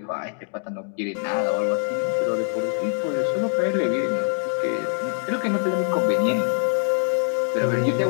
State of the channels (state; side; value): silent; right; 58 dB below the other